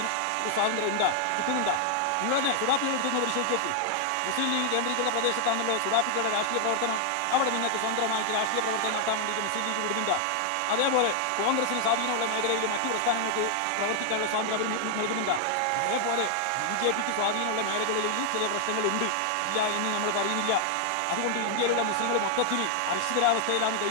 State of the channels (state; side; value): different; both; correlation 0.00